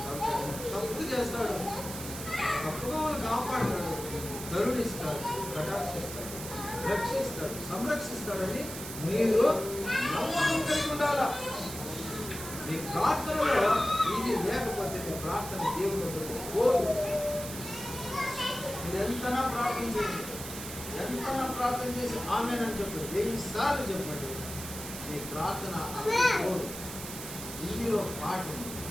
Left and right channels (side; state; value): right; noise; hiss, 9 dB below the sound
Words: తప్పు చేస్తాడు, తప్పుగా వాళ్ళు కాపాడతాడు, కరుణిస్తాడు, కటాక్షిస్తాడు, రక్షిస్తాడు, సంరక్షిస్తాడని మీరు నమ్మకం కలిగి ఉండాలా. మీ ప్రార్థనలో ఇది లేకపోతే మీ ప్రార్థన దేవుడు పోదు. మీరు ఎంతనా ప్రార్థించండి, ఎంతనా ప్రార్థన చేసి ఆమేనని చెప్పండి, 1000 సార్లు చెప్పండి, మీ ప్రార్థన పోదు. ఇందులో పాట ఉంది,